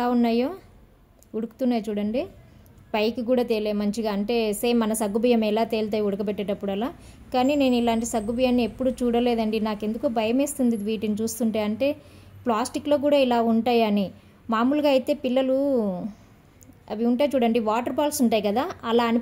ఉన్నాయో, ఉడుకుతున్నాయి చూడండి. పైకి కూడా తేలే మంచిగా, అంటే సేమ్ మన సగ్గుబియ్యం ఎలా తేలుతాయి ఉడకబెట్టేటప్పుడు అలా. కానీ నేను ఇలాంటి సగ్గుబియ్యాన్ని ఎప్పుడు చూడలేదండి. నాకెందుకో భయం వేస్తుంది వీటిని చూస్తుంటే. అంటే ప్లాస్టిక్లో కూడా ఇలా ఉంటాయని. మామూలుగా అయితే పిల్లలు అవి ఉంటాయి చూడండి, వాటర్ బాల్స్ ఉంటాయి కదా, అలా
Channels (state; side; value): identical; both; correlation 1.00